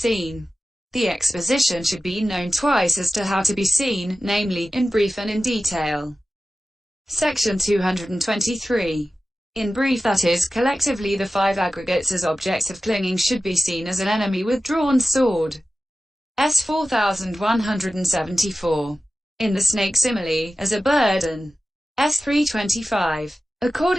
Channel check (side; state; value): both; normal; correlation 0.94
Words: The exposition should be known twice as to how to be seen, namely, in brief and in detail. Section 223. In brief, that is, collectively the 5 aggregates as objects of clinging should be seen as an enemy with drawn sword. S 4174. In the snake simile, as a burden. S 325.